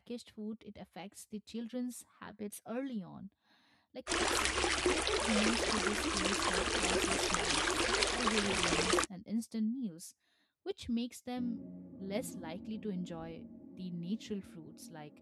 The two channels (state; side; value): identical; both; correlation 1.00